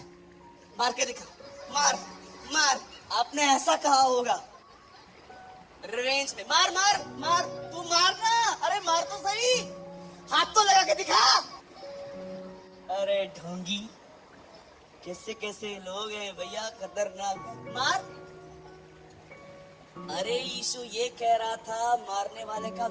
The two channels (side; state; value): both; identical; correlation 1.00